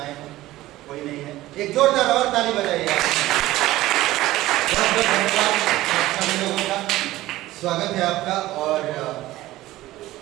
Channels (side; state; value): left; quieter; 16.5 dB